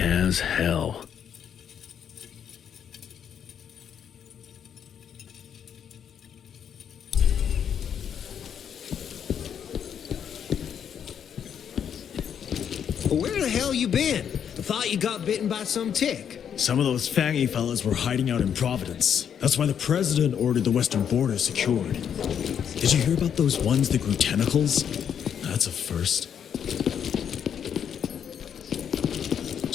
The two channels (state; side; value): quieter; right; 8.4 dB